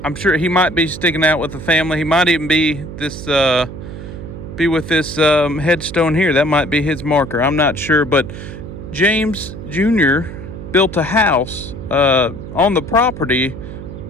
I'm sure he might be sticking out with the family. He might even be with this headstone here. That might be his marker. I'm not sure, but James Jr. built a house on the property,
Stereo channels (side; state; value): right; noise; hum, 11 dB below the sound